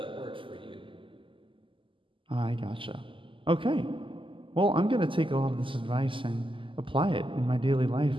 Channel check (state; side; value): late; left; 0.25 ms